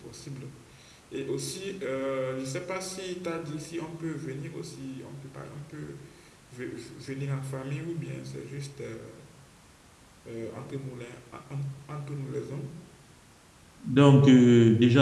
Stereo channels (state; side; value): identical; both; correlation 1.00